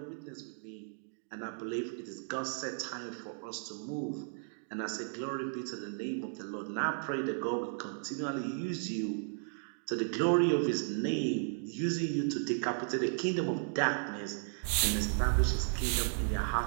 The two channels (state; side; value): silent; left; digital silence